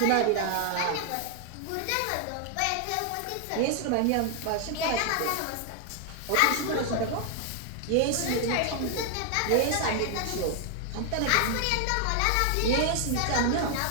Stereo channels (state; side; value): different; both; correlation 0.00